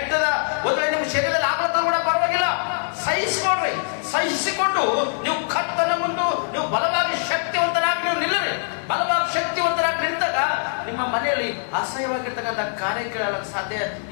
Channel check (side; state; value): right; silent; 63 dB below the other